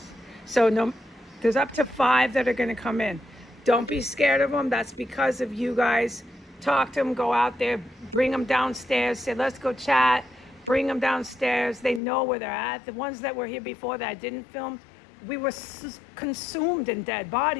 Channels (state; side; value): drops out; right; at 12.0 s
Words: So no, there's up to 5 that are going to come in. Don't be scared of them. That's because of you guys. Talk to them, go out there, bring them downstairs, say, let's go chat, bring them downstairs. They know where they're at. The ones that were here before that I didn't film, we were consumed in dead